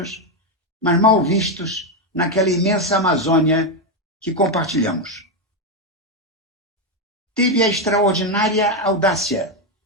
mas mal vistos naquela imensa Amazônia que compartilhamos. Teve a extraordinária audácia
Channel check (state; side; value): normal; both; correlation 0.06